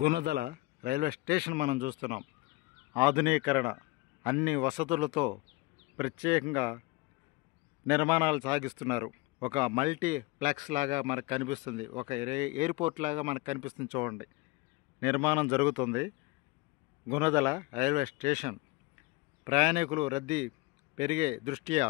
railway station మనం చూస్తున్నాం. ఆధునీకరణ అన్ని వసతులతో ప్రత్యేకంగా నిర్మాణాలు సాగిస్తున్నారు. ఒక మల్టీప్లెక్స్ లాగా మనకు కనిపిస్తుంది, ఒక ఎయిర్పోర్ట్ లాగా మనకు కనిపిస్తుంది. చూడండి, నిర్మాణం జరుగుతుంది. గుణదల రైల్వే స్టేషన్ ప్రయాణికులు రద్దీ పెరిగే దృష్ట్యా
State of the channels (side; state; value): right; quieter; 22.8 dB